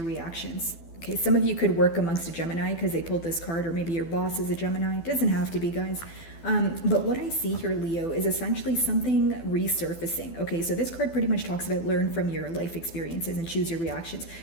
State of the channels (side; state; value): right; late; 12 ms